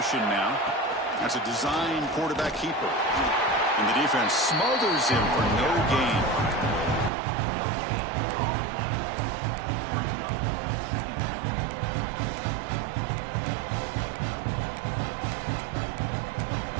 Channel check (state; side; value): drops out; left; at 7.1 s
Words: now. That's a design quarterback keeper. And the defense smothers him for no gain.